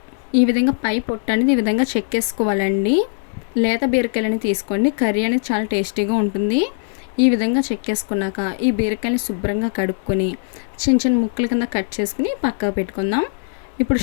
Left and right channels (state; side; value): silent; right; 62 dB below the other